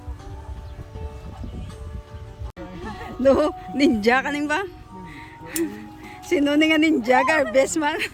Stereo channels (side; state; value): both; identical; correlation 1.00